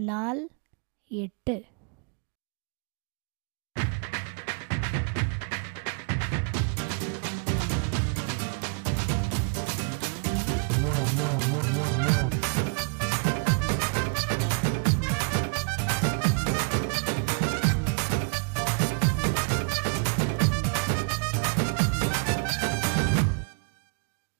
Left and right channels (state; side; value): quieter; left; 37.0 dB